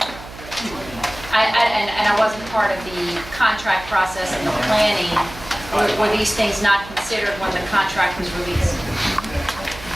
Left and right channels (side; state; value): right; noise; hum, 15 dB below the sound